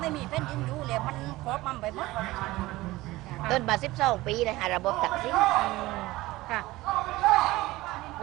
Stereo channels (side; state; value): left; quieter; 18.7 dB